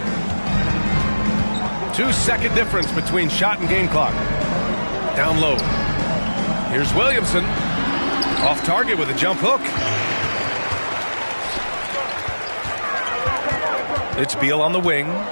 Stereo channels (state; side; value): inverted; both; correlation -1.00